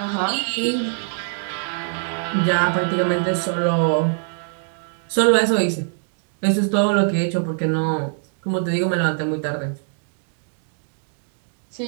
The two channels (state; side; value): silent; left; digital silence